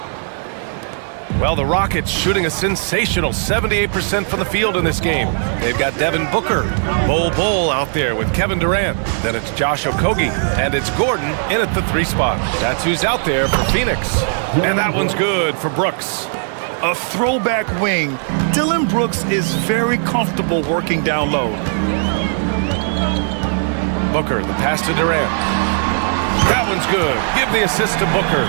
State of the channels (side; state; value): left; silent; digital silence